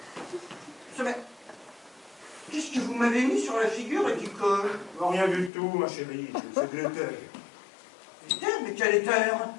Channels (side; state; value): right; drops out; at 5.5 s